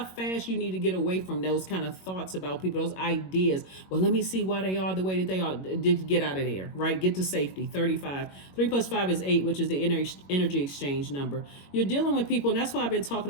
fast you need to get away from those kind of thoughts about people, those ideas. Well, let me see why they are the way that they are. Get out of there, right? Get to safety. 35. 3 plus 5 is 8, which is the energy exchange number. You're dealing with people, and that's what I've been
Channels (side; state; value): right; late; 21 ms